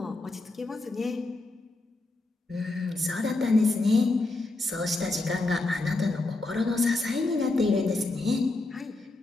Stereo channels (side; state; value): right; quieter; 3.1 dB